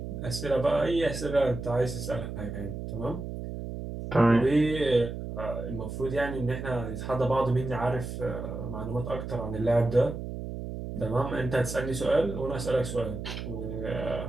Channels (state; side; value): noise; right; hum, 7 dB below the sound